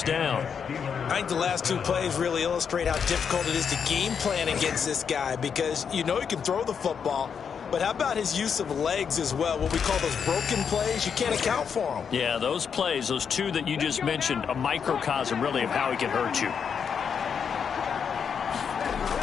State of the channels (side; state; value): right; quieter; 6.9 dB